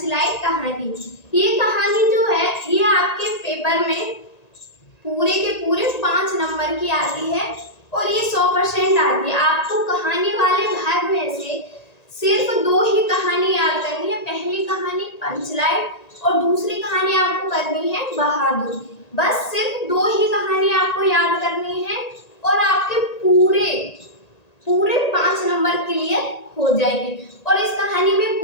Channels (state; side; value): late; right; 1.9 ms